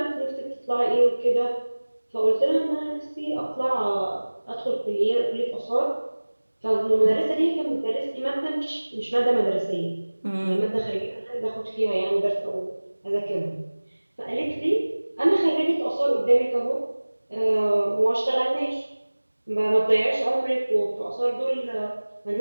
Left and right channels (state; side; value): inverted; both; correlation -1.00